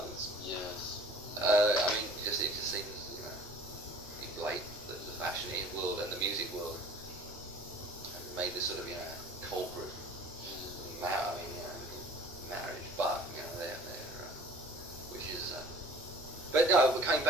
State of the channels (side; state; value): both; normal; correlation 0.47